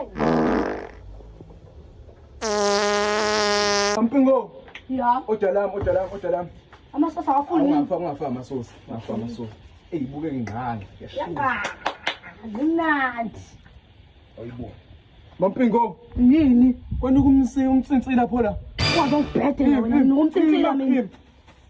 Mpingo. Ya. Odalam. Amasosa awafuni. Ungafa amasosa. Buke ngingane. Ya. Mnandi. Ayibo. Mpingo. Yini? Kwani umtsintsila lapho la. Kwazi ungibhede wena ngumtsintsila mina.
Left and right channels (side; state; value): both; identical; correlation 1.00